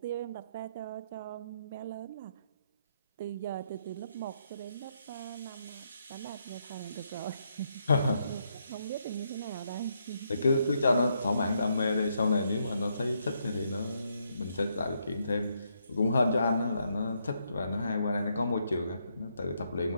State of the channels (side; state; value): both; inverted; correlation -0.76